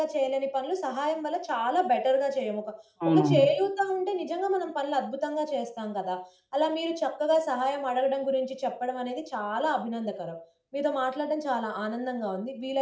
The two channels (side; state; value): both; identical; correlation 1.00